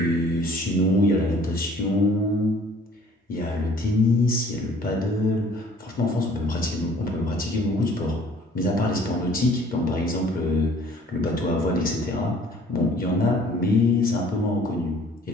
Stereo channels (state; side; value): normal; both; correlation 0.55